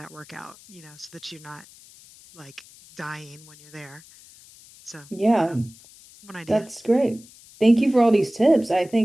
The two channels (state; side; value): noise; left; hiss, 23 dB below the sound